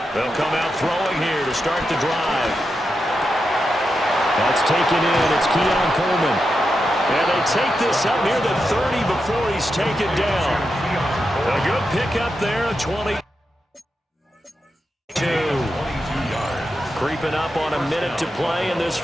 They'll come out throwing here to start the drive. That's taken in. It's Keon Coleman. And they take this up near the 30 before he's taken down. A good pickup there, a 22. Creeping up on a minute to play in this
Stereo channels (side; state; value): both; normal; correlation 0.87